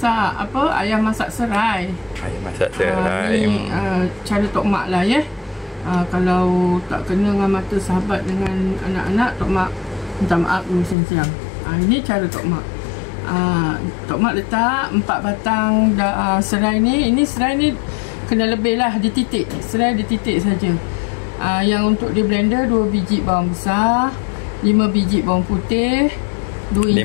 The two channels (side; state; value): right; drops out; at 11.0 s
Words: apa? Ayam masak serai. Ayam masak serai. Ni cara Tok Mak lah ya. Kalau tak kena dengan mata sahabat dengan anak-anak, Tok Mak minta maaf dulu siang-siang. Ini cara Tok Mak. Tok Mak letak 4 batang serai ni. Ini serai ni kena lebih lah, dititik. Serai dititik saja. Yang untuk di blender 2 biji bawang besar, 5 biji bawang putih, 2 inci.